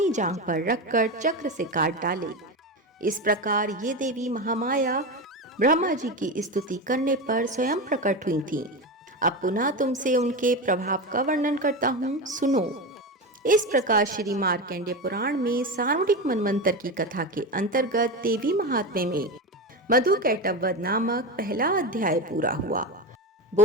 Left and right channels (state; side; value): normal; both; correlation 0.20